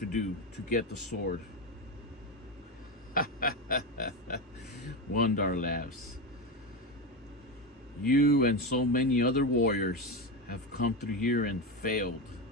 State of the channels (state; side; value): normal; both; correlation 0.15